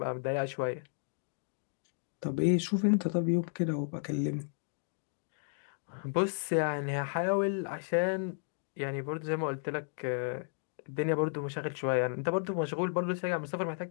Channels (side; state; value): right; silent; digital silence